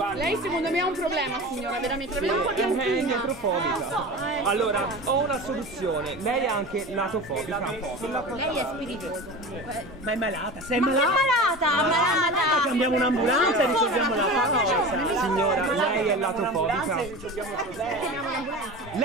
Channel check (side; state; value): both; normal; correlation 0.32